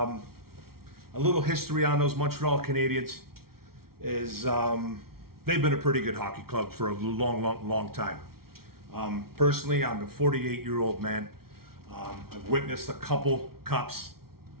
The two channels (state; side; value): late; left; 0.94 ms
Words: little history on those Montreal Canadiens is they've been a pretty good hockey club for a long time. Personally, I'm a 48-year-old man. I've witnessed a couple cups.